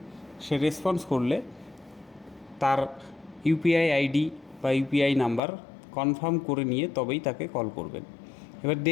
সে রেসপন্স করলে তার ইউপিআই আইডি বা ইউপিআই নাম্বার কনফার্ম করে নিয়ে তবেই তাকে কল করবেন। এবার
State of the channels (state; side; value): drops out; right; at 5.4 s